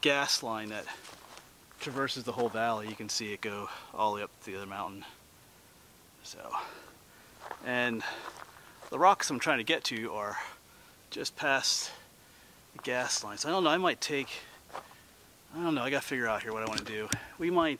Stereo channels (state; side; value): identical; both; correlation 1.00